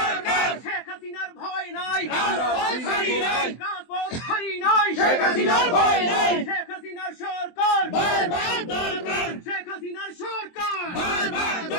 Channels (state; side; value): late; right; 23 ms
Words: শেখ হাসিনার ভয় নাই, রাজপথ হারি নাই, শেখ হাসিনার ভয় নাই। শেখ হাসিনার সরকার বারবার দরকার, শেখ হাসিনার সরকার বারবার